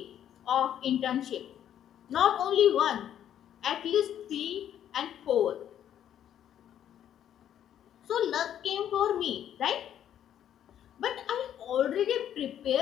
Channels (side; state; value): right; quieter; 10.3 dB